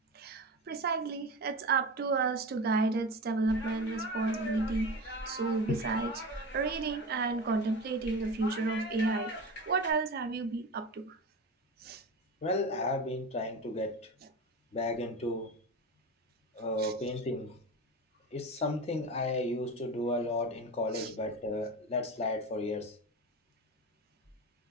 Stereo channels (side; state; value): both; normal; correlation 0.28